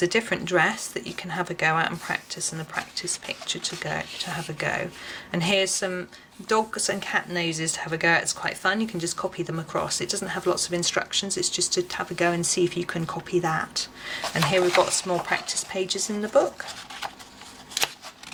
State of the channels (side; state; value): both; identical; correlation 1.00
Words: a different dress that you can have a go at and practice, and a practice picture to have a go. And here's some dogs and cat noses to have a go at. It's quite fun. You can just copy them across. It doesn't have lots of instructions. It's just to have a go and see if you can copy that. And here we've got some more practice pages in the book.